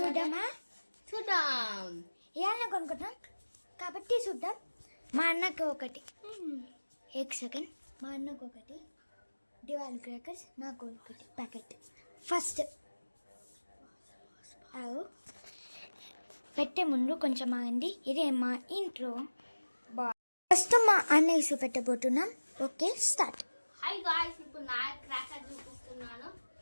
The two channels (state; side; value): inverted; both; correlation -1.00